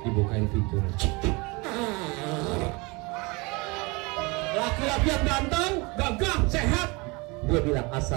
pintu. Laki-laki yang ganteng, gagah, sehat. Dia bilang,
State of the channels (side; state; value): left; quieter; 26.8 dB